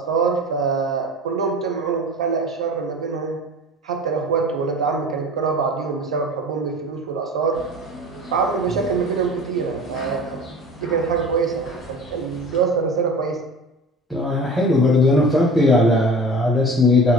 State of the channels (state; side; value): normal; both; correlation 0.38